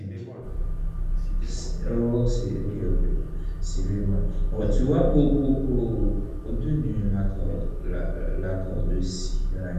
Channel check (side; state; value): both; identical; correlation 1.00